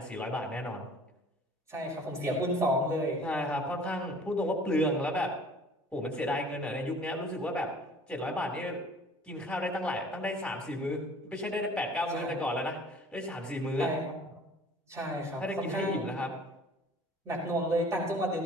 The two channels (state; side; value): normal; both; correlation 0.50